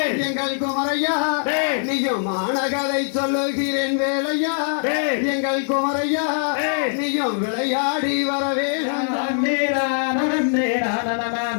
எங்கள் குமரையா, நீயும் மானகதை சொல்லுகிறேன் வேலையா எங்கள் குமரையா, நீயும் விளையாடி வரவே.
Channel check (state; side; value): silent; right; 64 dB below the other